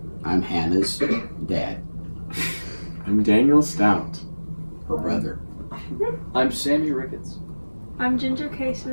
I'm Hannah's dad, I'm Daniel Stout. her brother. I'm Sammy Ricketts. I'm Ginger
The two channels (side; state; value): both; inverted; correlation -1.00